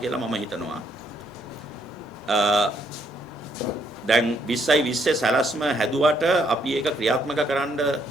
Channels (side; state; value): both; normal; correlation 0.71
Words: මම හිතනවා. දැන් 2020 සැලැස්ම හැදුවට අපි ඒක ක්‍රියාත්මක කරන්න